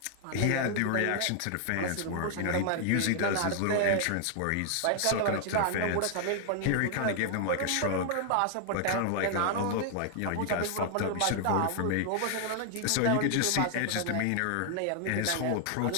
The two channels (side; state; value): both; different; correlation 0.00